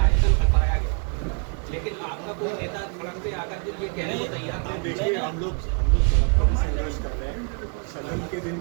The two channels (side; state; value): left; quieter; 38.2 dB